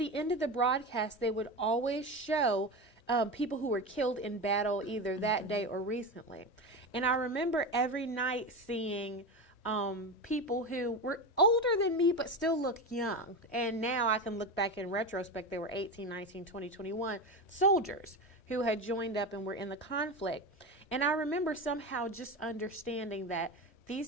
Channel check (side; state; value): right; late; 3.1 ms